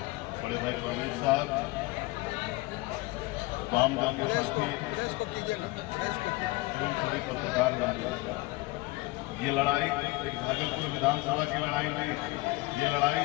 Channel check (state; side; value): quieter; right; 22.2 dB